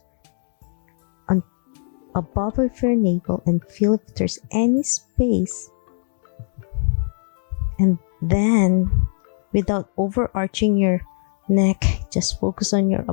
on above of your navel and feel if there's any space. And then, without overarching your neck, just focus on your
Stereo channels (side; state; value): right; silent; 58 dB below the other